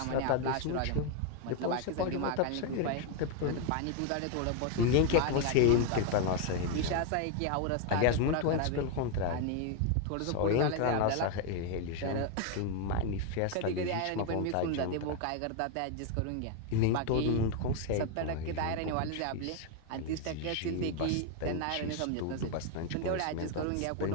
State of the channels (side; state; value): both; different; correlation 0.01